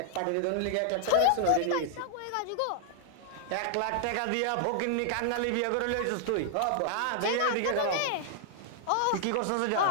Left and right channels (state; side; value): different; both; correlation -0.01